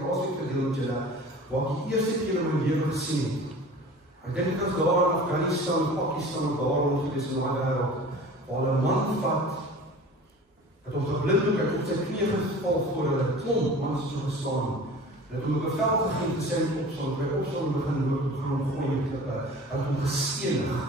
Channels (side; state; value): both; normal; correlation 0.41